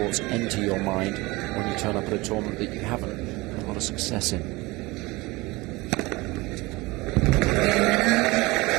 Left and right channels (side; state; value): left; quieter; 22.3 dB